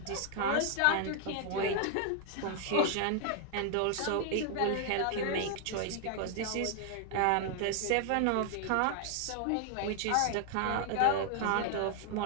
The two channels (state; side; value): different; both; correlation 0.00